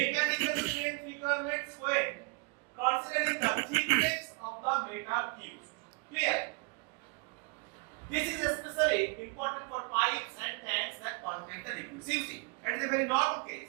strength requirements when considering the thickness of the metal used. Clear? This is especially important for pipes and tanks that contain the liquids. You see, it is a very normal case.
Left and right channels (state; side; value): quieter; left; 31.6 dB